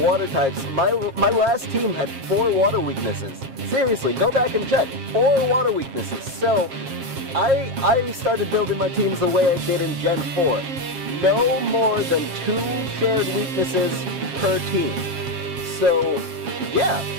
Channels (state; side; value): late; left; 7.4 ms